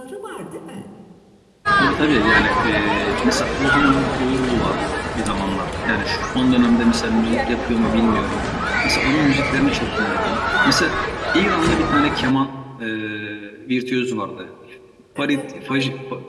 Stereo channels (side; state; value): both; identical; correlation 1.00